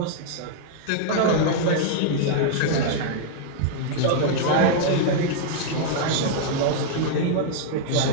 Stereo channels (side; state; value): both; different; correlation -0.01